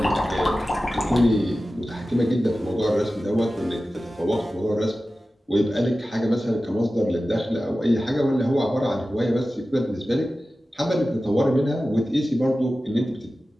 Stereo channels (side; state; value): both; normal; correlation 0.95